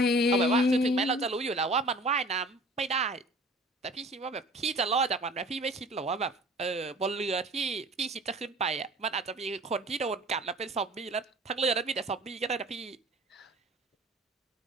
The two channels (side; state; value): both; normal; correlation 0.46